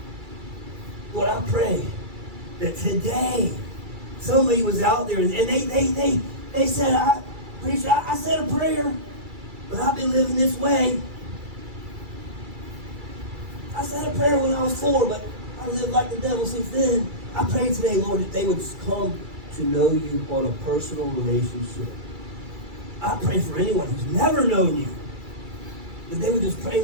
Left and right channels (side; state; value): left; late; 2.3 ms